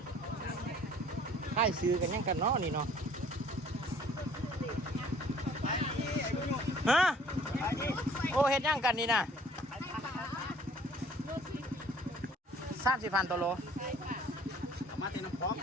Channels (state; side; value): normal; both; correlation 0.54